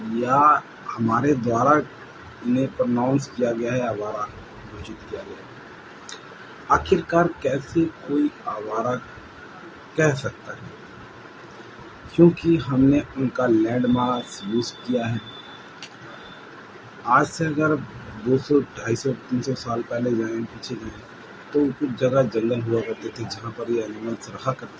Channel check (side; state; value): both; identical; correlation 1.00